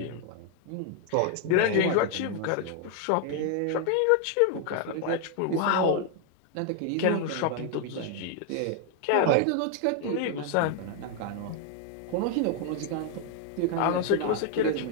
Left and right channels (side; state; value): both; different; correlation 0.00